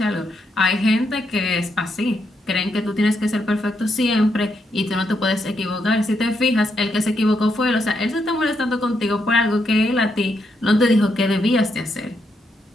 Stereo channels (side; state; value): both; normal; correlation 0.80